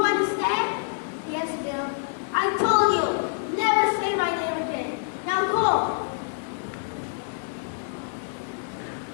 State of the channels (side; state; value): right; silent; digital silence